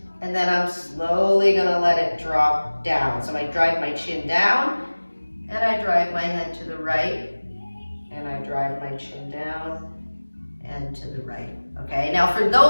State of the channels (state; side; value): inverted; both; correlation -1.00